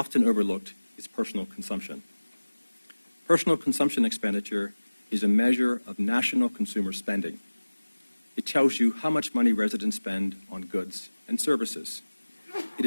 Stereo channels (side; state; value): both; inverted; correlation -1.00